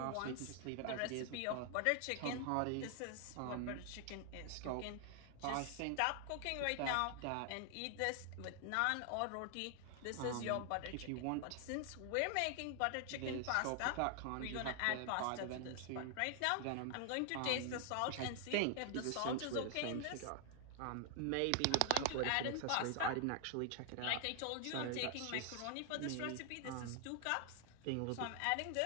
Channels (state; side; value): different; both; correlation 0.00